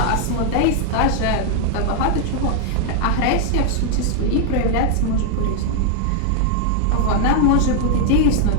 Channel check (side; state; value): both; different; correlation 0.00